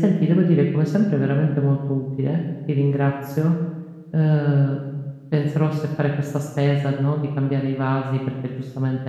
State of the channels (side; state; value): both; identical; correlation 1.00